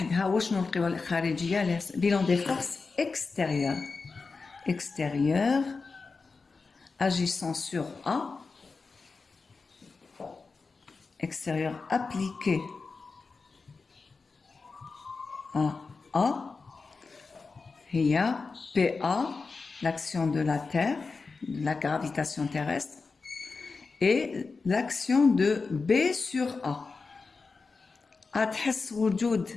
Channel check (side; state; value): right; quieter; 4.4 dB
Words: وشنو القوى الخارجية؟ bilan des forces extérieures. Extérieures agissant sur A. Extérieur appliqué à A. Il y a PA, l'action de la Terre, de la gravitation terrestre, et l'action de B sur A. تحس وجود